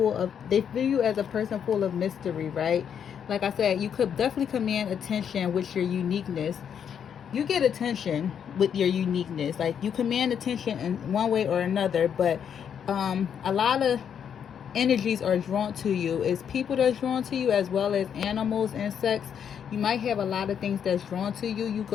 of, they view you as a person full of mystery, right? Like I said, you could definitely command attention with your uniqueness. You get attention with your uniqueness. Like, you command attention in one way or another, but a lot of energies are drawn to you. It's people that's drawn to you, as well as animals, insects. You might have a lot of things that's drawn to you. You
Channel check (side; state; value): right; quieter; 8.1 dB